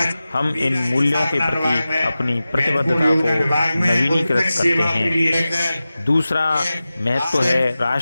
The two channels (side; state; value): both; inverted; correlation -0.95